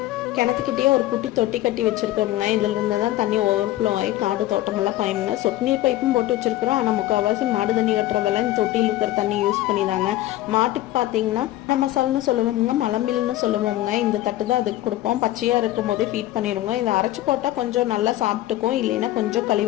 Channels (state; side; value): quieter; right; 15.3 dB